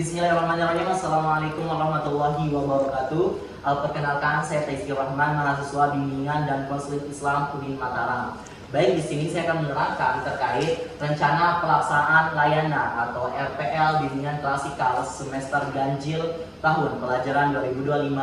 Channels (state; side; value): identical; both; correlation 1.00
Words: Assalamualaikum warahmatullahi wabarakatuh. Perkenalkan, saya Taizkir Rahman, mahasiswa bimbingan dan konseling Islam UIN Mataram. Baik, di sini saya akan menerangkan terkait rencana pelaksanaan layanan atau RPL bimbingan klasikal semester ganjil tahun pelajaran